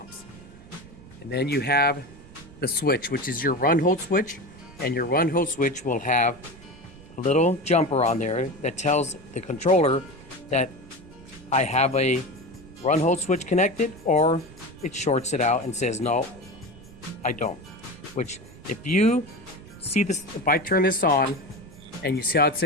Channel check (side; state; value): right; noise; rumble, 20 dB below the sound